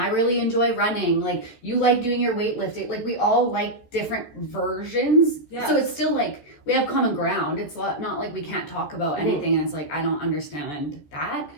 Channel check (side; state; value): right; late; 14 ms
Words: really enjoy running. Like you like doing your weightlifting. Like we all like different versions. Yes. So it's still like we have common ground. It's not like we can't talk about anything, and it's like I don't understand that.